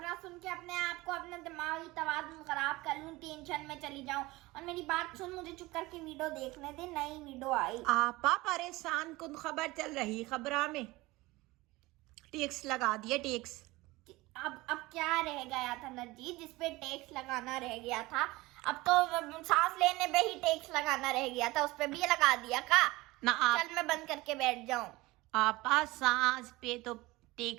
सुन के अपने आप को अपना दिमागी तवाज़ुन खराब कर लूँ, टेंशन में चली जाऊँ। और मेरी बात सुन, मुझे चुप करके वीडियो देखने दे। नई वीडियो आई। आपा, परेशान कुन खबर चल रही। खबरा में टैक्स लगा दिया, टैक्स। अब क्या रह गया था नरजीत जिसपे टैक्स लगाना रह गया था? अब तो सांस लेने पे ही टैक्स लगाना रह गया था, उस पे भी लगा दिया का? ना चल मैं बंद करके बैठ जाऊं। आपा, सांस पे तो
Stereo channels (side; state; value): left; quieter; 20.7 dB